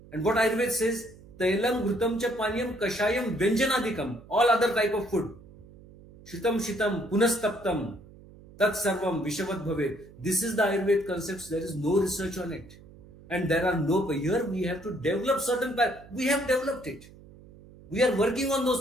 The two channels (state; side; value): noise; right; hum, 21 dB below the sound